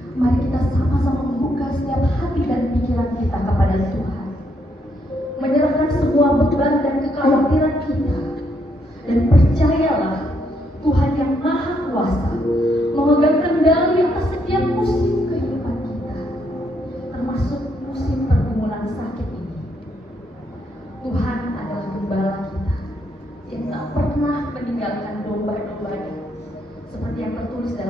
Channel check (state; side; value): normal; both; correlation 0.75